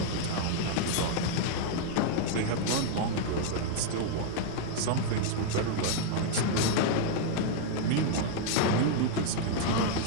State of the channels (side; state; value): both; different; correlation -0.01